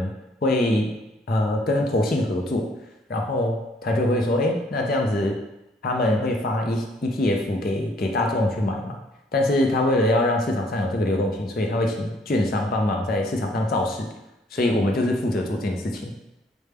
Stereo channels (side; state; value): both; normal; correlation 0.63